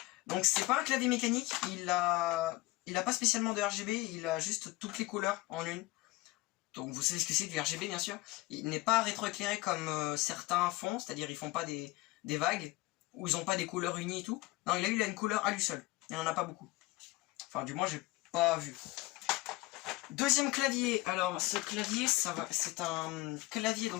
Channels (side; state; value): right; quieter; 20.5 dB